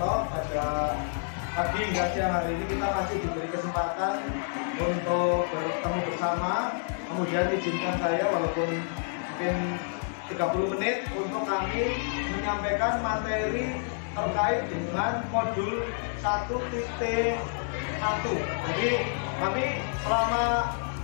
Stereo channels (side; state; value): right; silent; digital silence